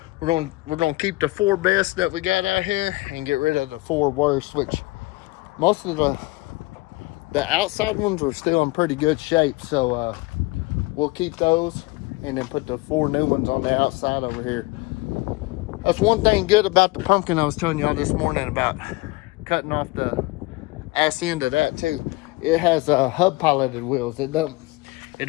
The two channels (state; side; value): quieter; right; 22.7 dB